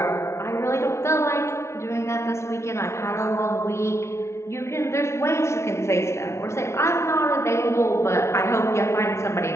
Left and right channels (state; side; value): late; right; 0.13 ms